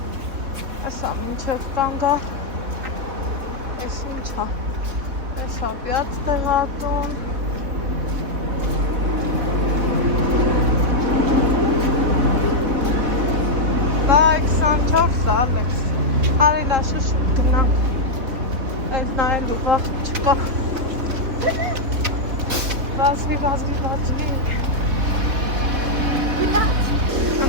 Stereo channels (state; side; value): late; left; 3.6 ms